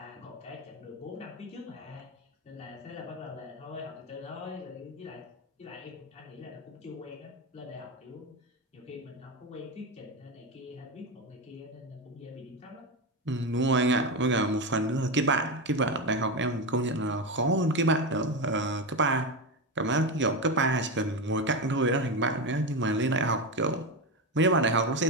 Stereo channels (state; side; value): normal; both; correlation 0.15